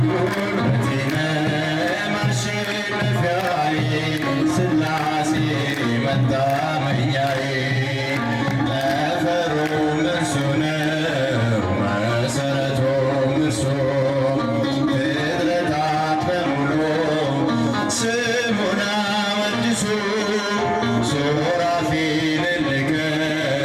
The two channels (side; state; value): both; identical; correlation 1.00